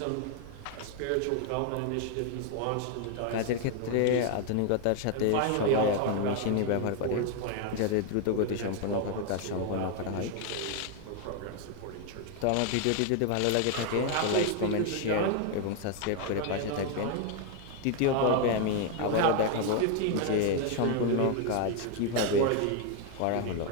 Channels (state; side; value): different; both; correlation 0.01